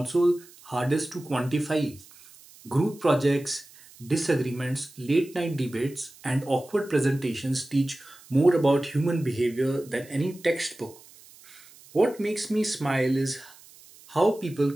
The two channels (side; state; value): right; noise; hiss, 23 dB below the sound